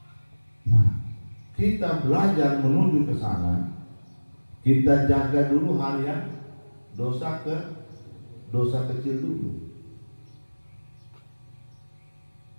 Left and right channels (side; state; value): both; inverted; correlation -1.00